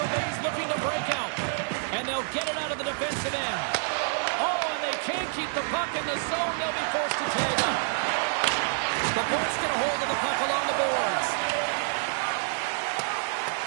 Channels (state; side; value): silent; left; digital silence